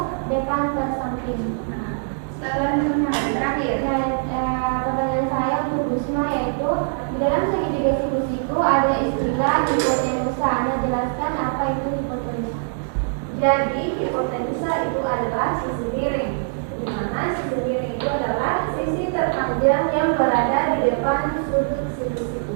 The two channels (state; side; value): silent; left; digital silence